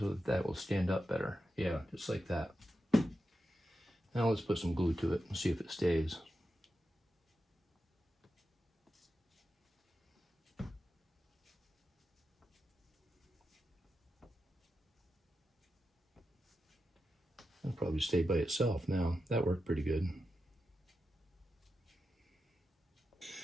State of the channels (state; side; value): normal; both; correlation 0.89